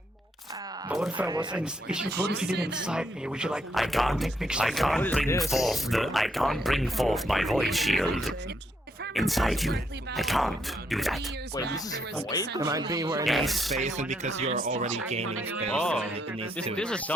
But what if I was what if you did inside me? Would you like? I can't bring forth my void shield inside you. I can't do that. Wait, this is void? It might be where Yes. space, and because you're already gaining space, Oh, it needs this to is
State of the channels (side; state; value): both; normal; correlation 0.75